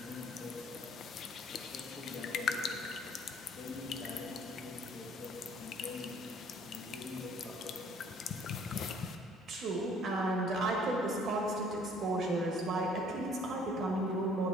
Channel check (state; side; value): normal; both; correlation 0.57